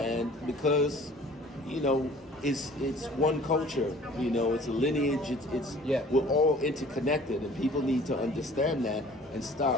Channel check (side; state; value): both; normal; correlation 0.50